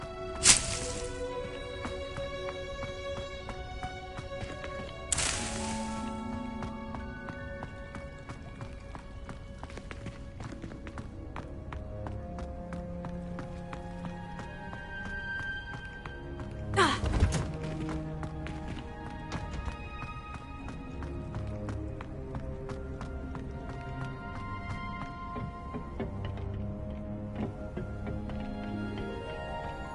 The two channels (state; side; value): identical; both; correlation 1.00